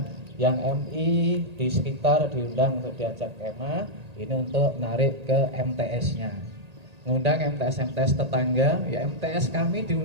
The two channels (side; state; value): left; late; 1.8 ms